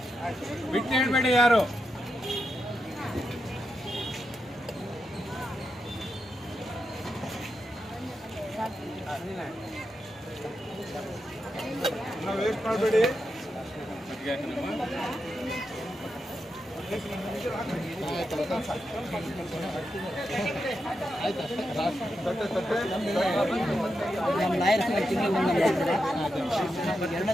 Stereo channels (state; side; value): normal; both; correlation 0.86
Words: ಬಿಟ್ಟು ಹೇಳ್ಬೇಡಿ ಯಾರು ವೇಸ್ಟ್ ಮಾಡಬೇಡಿ. ನಮ್ಮ ಲಾಯರ್ಸ್ ತಿಂಗಳು ಬಂದಿದ್ದಾರೆ. 2ನೇ